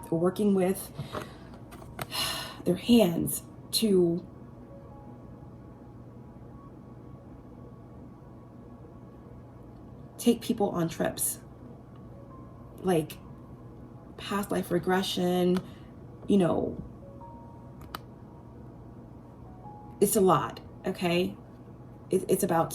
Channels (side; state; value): both; identical; correlation 1.00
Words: or working with their hands to take people on trips, like past life regression, you know, it's a lot, okay? It's about